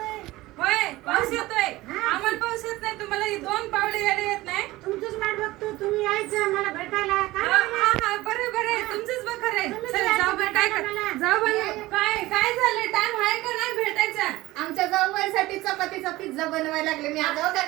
होय पाऊस येतोय. आम्हाला पाऊस येत नाही, तुम्हाला दोन पावले यायला येत नाही. तुमचंच वाट बघतो, तुम्ही यायचं मला भेटायला. बरे बरे, तुमचंच बघ खरंय. जाऊबाई काय जाऊबाई काय झालं? टाइम आहे का नाही भेटायचा? आमच्या जाऊबाईसाठी चपातीचा पिझ्झा बनवायला लागले. मी आता का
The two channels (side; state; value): left; quieter; 18.5 dB